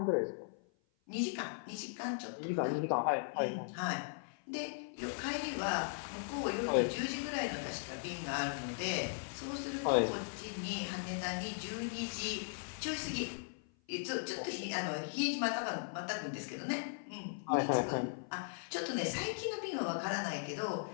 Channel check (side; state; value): right; silent; 52 dB below the other